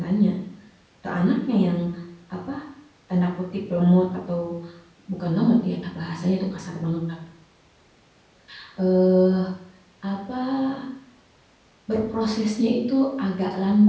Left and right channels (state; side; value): identical; both; correlation 1.00